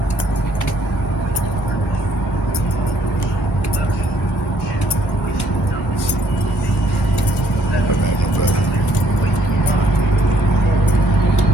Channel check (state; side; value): normal; both; correlation 0.66